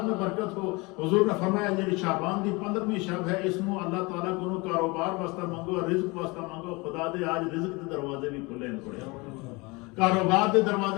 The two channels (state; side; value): quieter; right; 25.8 dB